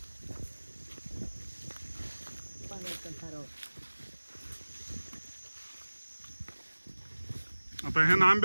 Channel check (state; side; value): inverted; both; correlation -1.00